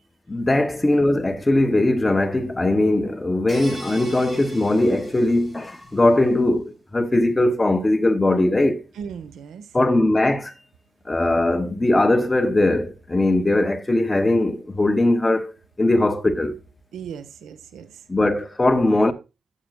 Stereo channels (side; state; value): both; normal; correlation 0.96